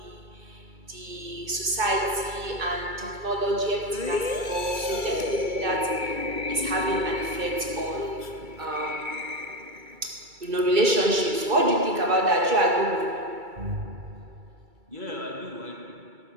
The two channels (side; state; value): left; late; 2.3 ms